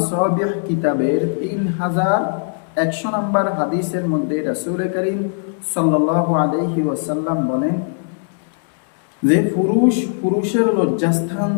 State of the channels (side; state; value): right; silent; digital silence